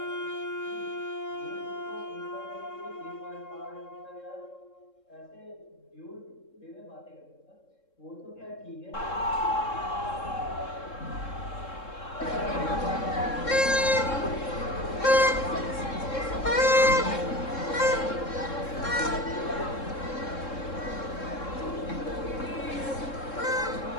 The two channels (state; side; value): late; right; 3.7 ms